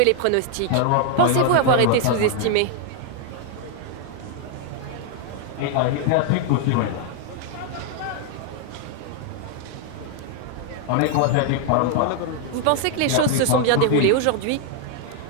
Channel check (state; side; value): different; both; correlation 0.00